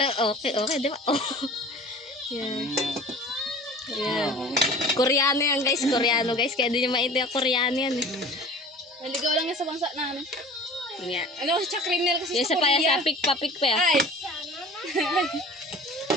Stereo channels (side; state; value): both; normal; correlation 0.42